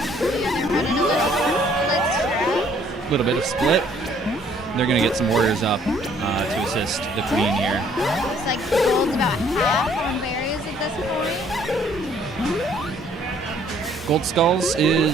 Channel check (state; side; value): normal; both; correlation 0.62